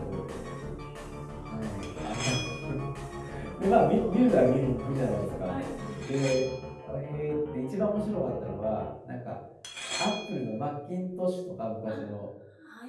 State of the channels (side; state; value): both; identical; correlation 1.00